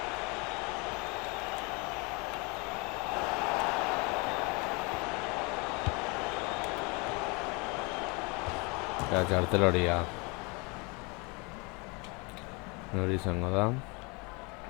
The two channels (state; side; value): quieter; right; 29.3 dB